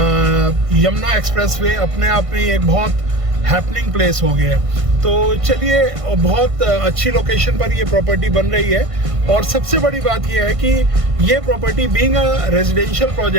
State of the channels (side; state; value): left; late; 1.5 ms